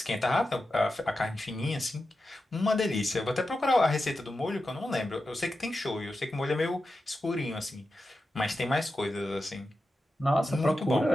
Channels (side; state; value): both; normal; correlation 0.91